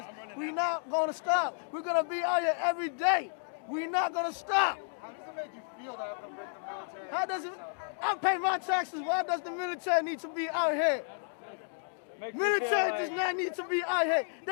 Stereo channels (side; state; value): right; silent; digital silence